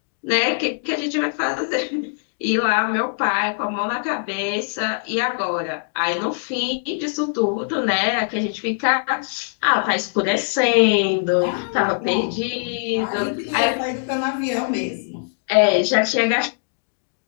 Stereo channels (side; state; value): right; silent; digital silence